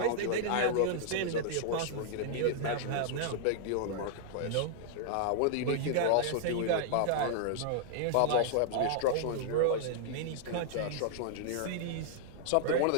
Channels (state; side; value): different; both; correlation -0.01